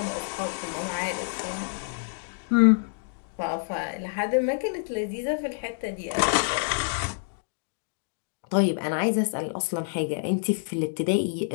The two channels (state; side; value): silent; right; digital silence